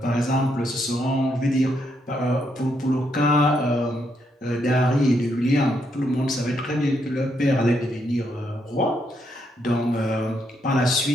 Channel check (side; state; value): both; normal; correlation 0.77